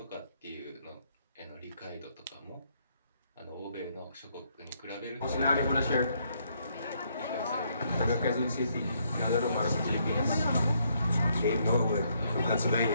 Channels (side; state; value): both; inverted; correlation -0.72